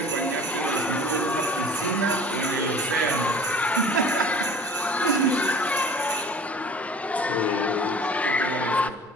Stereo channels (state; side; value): normal; both; correlation 0.45